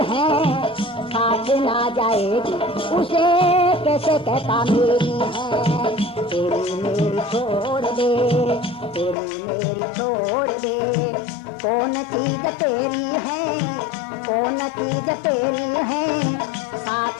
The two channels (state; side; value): drops out; right; at 9.2 s